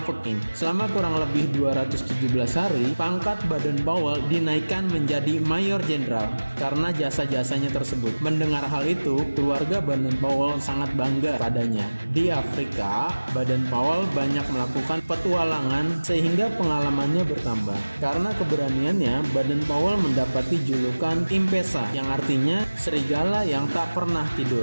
Selama kurang lebih 217 hari, pangkat Baden-Powell dinaikkan menjadi Mayor Jenderal karena jasa-jasanya tersebut. Mendengar hal itu, keluarga Baden-Powell sangat bangga padanya. Di Afrika, Baden-Powell banyak melakukan petualangan sehingga pengalamannya bertambah. Karena keberaniannya, Baden-Powell mendapati julukan Impesa yang artinya serigala yang tak pernah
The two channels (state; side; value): inverted; both; correlation -1.00